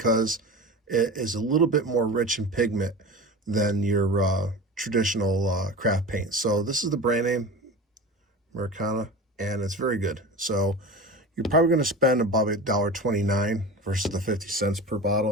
it is a little bit more rich in pigment than your traditional craft paint. So this is the brand name, Americana, and it's very good. So you're probably going to spend about $1.29 versus the 50 cents per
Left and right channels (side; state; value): both; normal; correlation 0.32